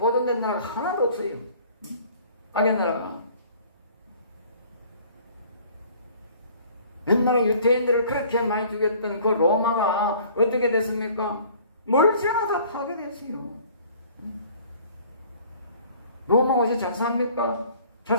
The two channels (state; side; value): inverted; both; correlation -0.52